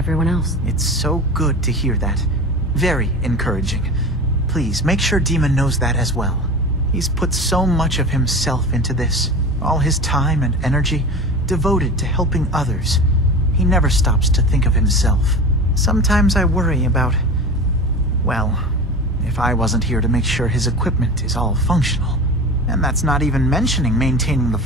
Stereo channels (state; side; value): normal; both; correlation 0.31